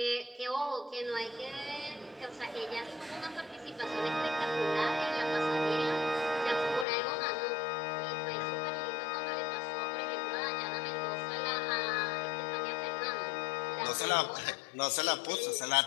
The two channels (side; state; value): right; drops out; at 6.9 s